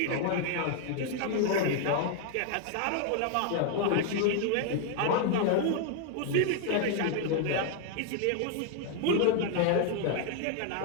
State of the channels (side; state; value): both; different; correlation 0.00